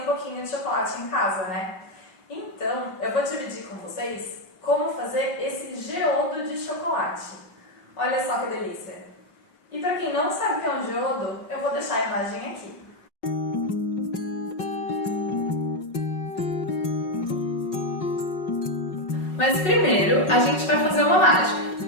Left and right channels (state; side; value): late; right; 5.4 ms